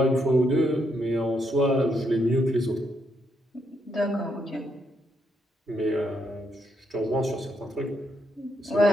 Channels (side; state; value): both; normal; correlation 0.77